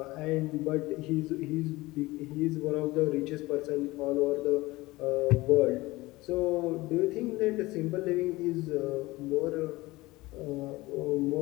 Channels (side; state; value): right; quieter; 20.3 dB